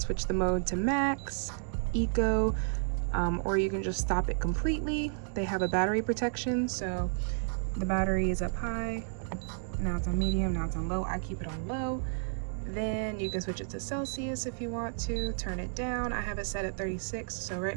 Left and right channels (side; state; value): left; silent; digital silence